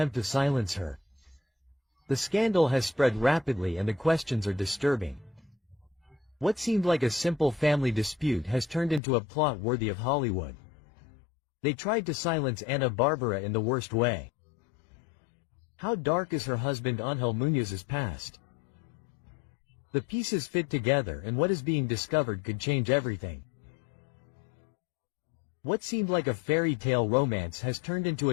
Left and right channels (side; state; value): right; drops out; at 9.0 s